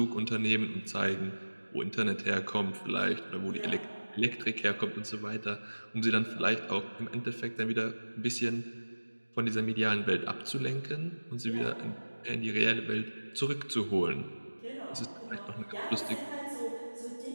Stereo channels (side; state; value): both; inverted; correlation -1.00